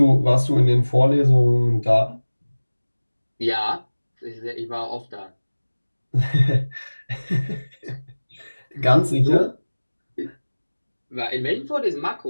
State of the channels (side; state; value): both; inverted; correlation -1.00